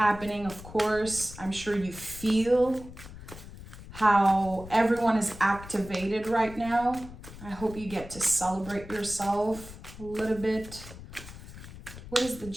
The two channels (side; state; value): left; noise; rumble, 15 dB below the sound